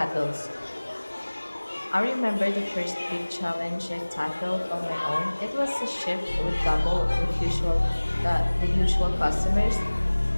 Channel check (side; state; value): both; inverted; correlation -1.00